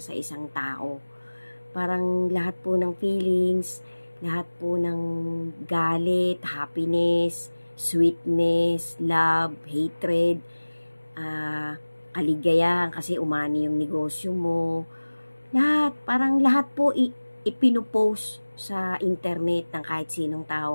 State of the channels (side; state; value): both; inverted; correlation -1.00